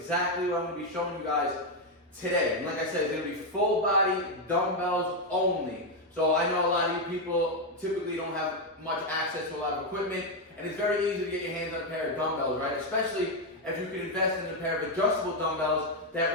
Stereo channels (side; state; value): both; normal; correlation 0.04